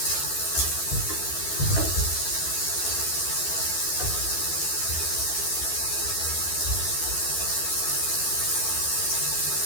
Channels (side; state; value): right; late; 12 ms